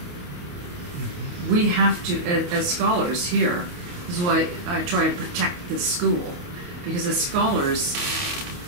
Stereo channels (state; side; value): late; left; 28 ms